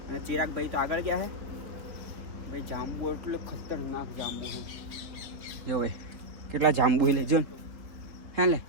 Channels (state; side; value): late; left; 3.8 ms